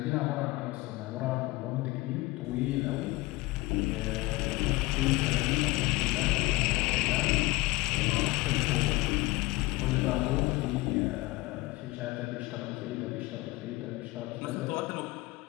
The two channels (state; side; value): quieter; right; 21.5 dB